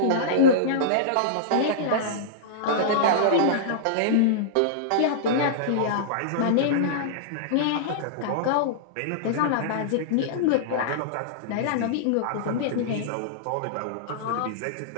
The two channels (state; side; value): different; both; correlation -0.03